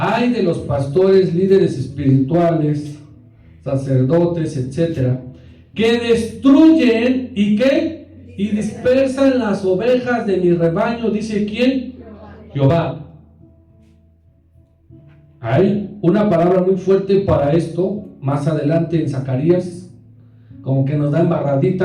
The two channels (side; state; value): both; identical; correlation 1.00